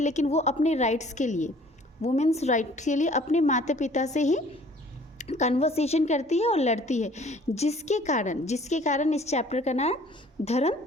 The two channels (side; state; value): both; normal; correlation 0.54